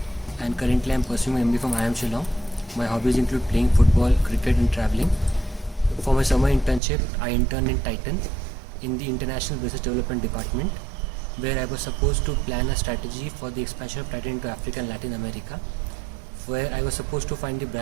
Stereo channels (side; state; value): left; drops out; at 6.8 s